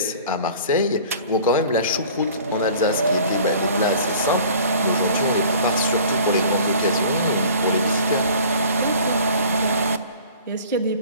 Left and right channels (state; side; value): inverted; both; correlation -0.47